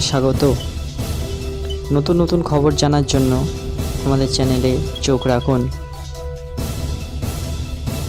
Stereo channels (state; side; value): identical; both; correlation 1.00